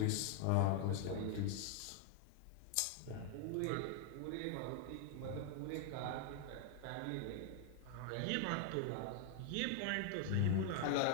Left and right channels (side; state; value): both; different; correlation 0.00